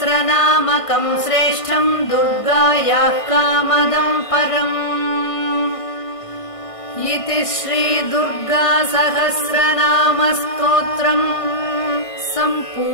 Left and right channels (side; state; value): right; late; 1.5 ms